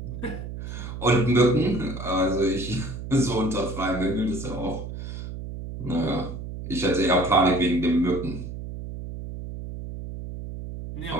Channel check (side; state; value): right; noise; hum, 8 dB below the sound